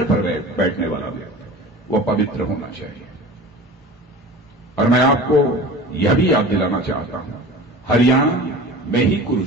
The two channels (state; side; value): normal; both; correlation 0.37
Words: पर बैठने वाला व्यक्ति वह पवित्र होना चाहिए। और मैं आपको यह भी याद दिलाना चाहता हूं, हरियाणा में ही